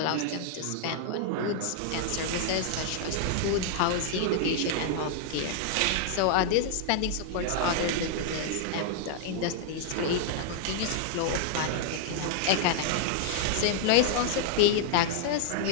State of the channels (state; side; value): different; both; correlation 0.00